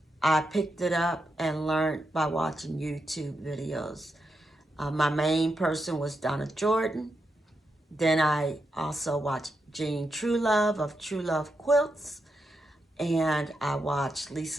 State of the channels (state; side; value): normal; both; correlation 0.85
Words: I picked it up and learned by watching YouTube videos. My main person was Donna Jordan, Then I also watch Jean Truelove of True Love Quilts. And I watch